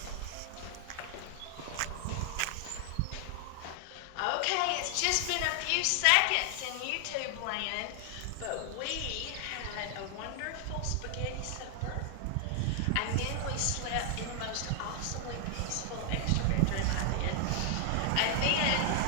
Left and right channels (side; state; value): both; different; correlation 0.00